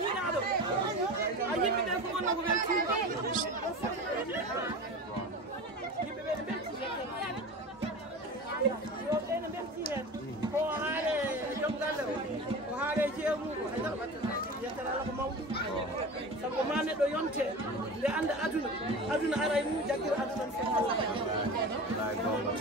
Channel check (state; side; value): normal; both; correlation 0.32